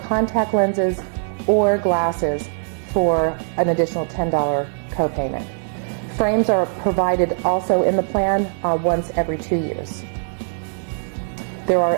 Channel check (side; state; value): left; silent; digital silence